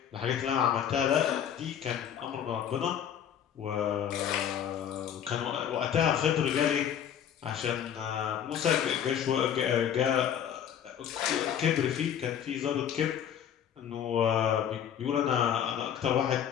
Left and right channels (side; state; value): right; quieter; 9.2 dB